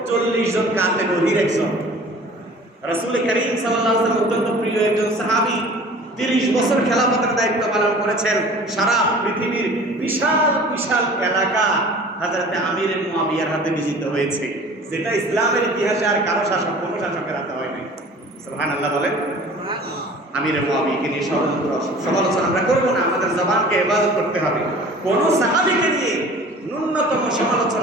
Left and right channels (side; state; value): both; normal; correlation 0.45